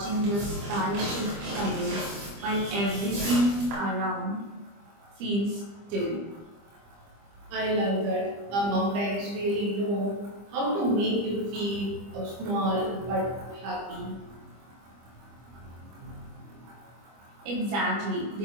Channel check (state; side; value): late; left; 25 ms